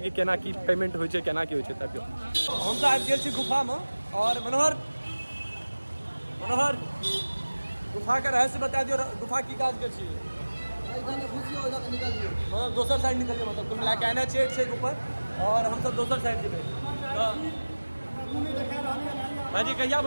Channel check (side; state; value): both; inverted; correlation -1.00